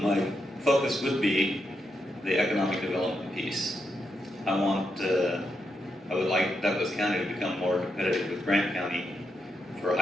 my focus would be the economic development piece. I would like Douglas County to become more competitive with Grant County for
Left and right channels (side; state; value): both; normal; correlation 0.83